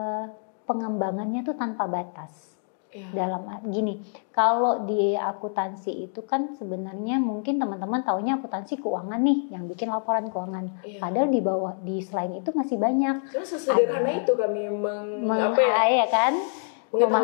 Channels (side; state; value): right; silent; 61 dB below the other